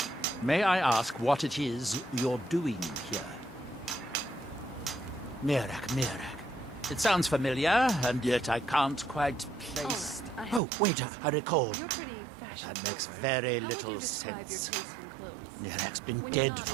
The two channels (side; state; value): left; drops out; at 10.6 s